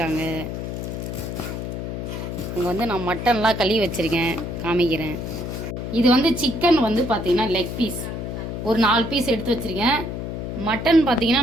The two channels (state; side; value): noise; left; hum, 5 dB below the sound